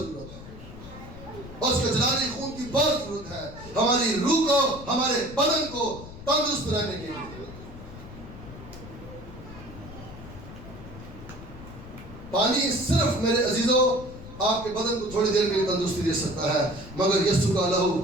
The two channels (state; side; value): noise; left; rumble, 15 dB below the sound